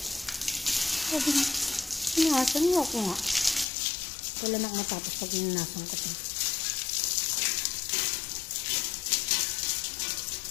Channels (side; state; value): right; drops out; at 3.7 s